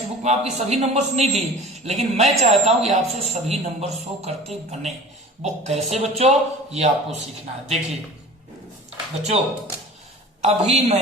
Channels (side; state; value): both; normal; correlation 0.40